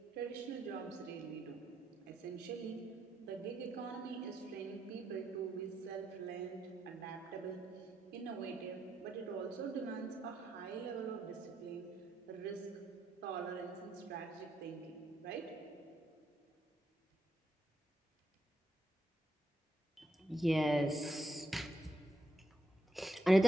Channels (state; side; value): normal; both; correlation 0.81